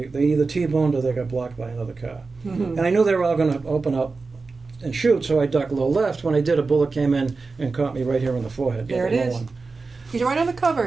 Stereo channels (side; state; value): left; quieter; 4.1 dB